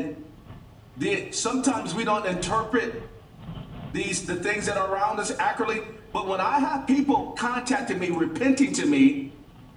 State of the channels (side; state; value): both; identical; correlation 1.00